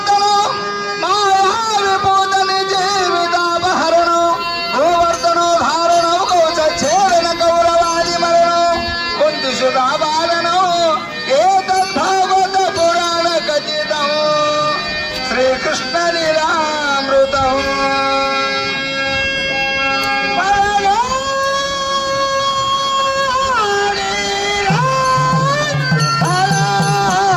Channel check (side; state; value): both; identical; correlation 1.00